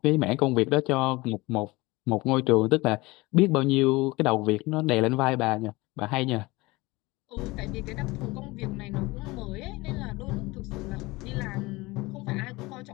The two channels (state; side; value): quieter; right; 22.1 dB